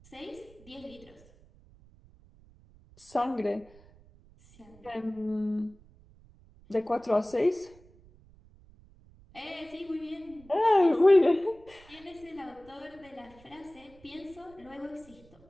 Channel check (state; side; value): noise; right; rumble, 25 dB below the sound